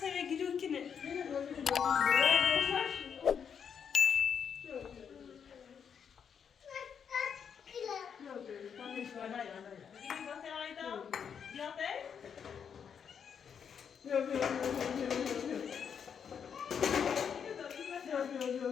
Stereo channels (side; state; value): right; quieter; 7.3 dB